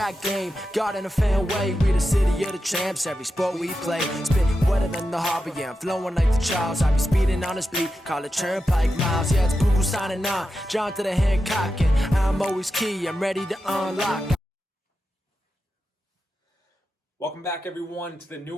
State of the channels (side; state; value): both; normal; correlation 0.90